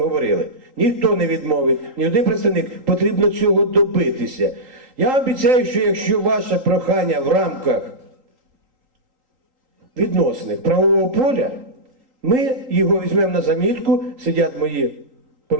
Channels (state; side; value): late; left; 3.8 ms